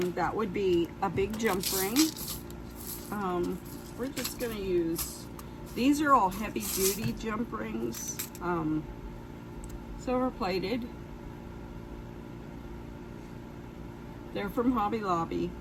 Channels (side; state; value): both; identical; correlation 1.00